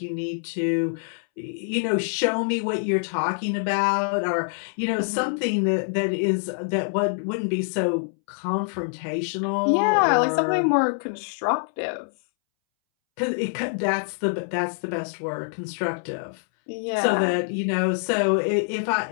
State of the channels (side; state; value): right; silent; 62 dB below the other